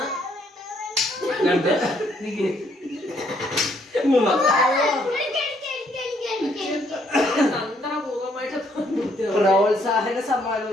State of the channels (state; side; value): normal; both; correlation 0.68